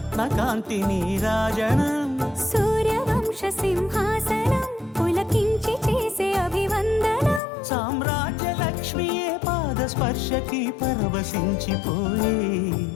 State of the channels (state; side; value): drops out; right; at 7.4 s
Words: కాంతి నీరాజనం సూర్యవంశ సింహాసనం పులకించి చేసే అభివందనం సామ్రాజ్య లక్ష్మియే పాద స్పర్శకి పరవశించిపోయే